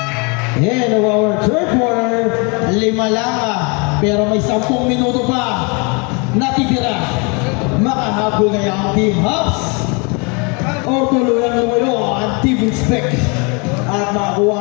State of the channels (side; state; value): right; quieter; 32.0 dB